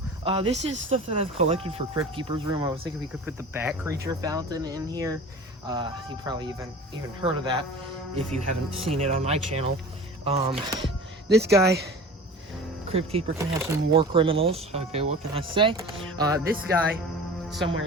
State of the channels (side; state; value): both; normal; correlation 0.38